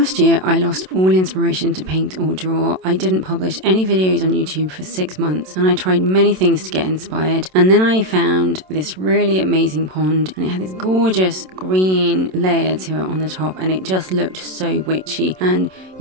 year I lost all inspiration to paint or draw. I didn't publish any videos on YouTube for 6 months and I tried many things to get inspired, and then I found this really amazing pond and it had this gorgeous green layer to it on the top and it just looked so witchy, and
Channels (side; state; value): left; late; 27 ms